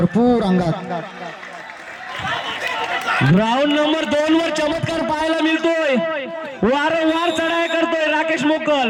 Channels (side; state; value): both; identical; correlation 1.00